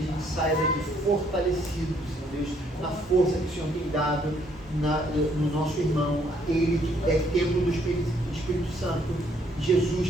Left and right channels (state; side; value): normal; both; correlation 0.67